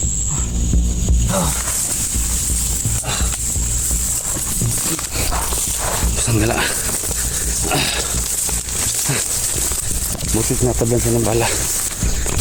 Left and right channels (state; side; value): identical; both; correlation 1.00